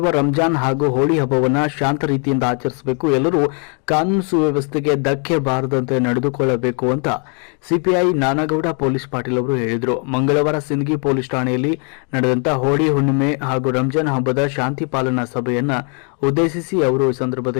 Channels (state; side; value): quieter; right; 39.4 dB